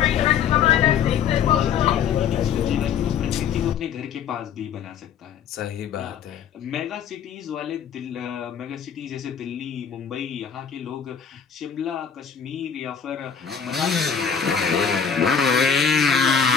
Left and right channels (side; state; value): right; quieter; 7.3 dB